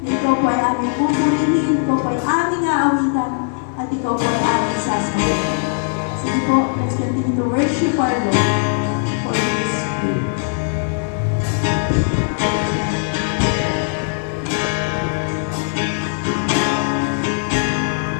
na ikaw po ay aming pupurihin, ikaw po ay aming aawitan, at ikaw po ay aming sasabihin. Sige po, let's continue to worship our Lord for His good.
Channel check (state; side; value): silent; right; digital silence